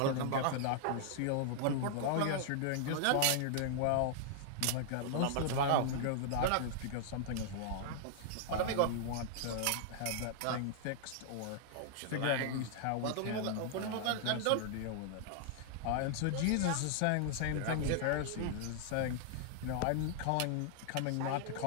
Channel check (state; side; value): different; both; correlation -0.01